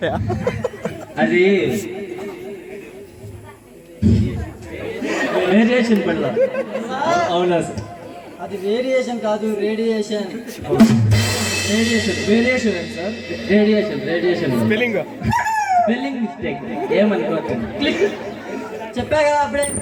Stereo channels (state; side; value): identical; both; correlation 1.00